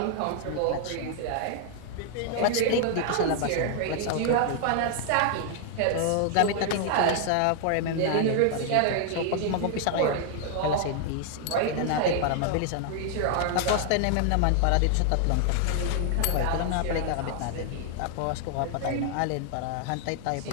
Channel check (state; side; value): different; both; correlation 0.00